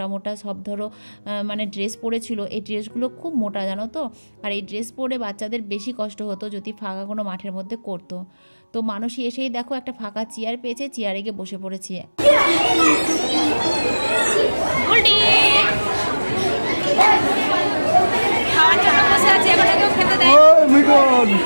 মোটা সব ধরো মানে ড্রেস পরেছিল, এই ড্রেসগুলো খুব মোটা জানো তো। আর এই ড্রেস পরে বাচ্চাদের বেশি কষ্ট হতো যদি ফাঁকা কোনো মাঠের মধ্যে করতো। তো মানসী এসেই দেখো একটা ফাঁকা চেয়ার পেয়েছে, চেয়ারে গিয়ে বসে পড়েছি।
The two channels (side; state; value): both; inverted; correlation -1.00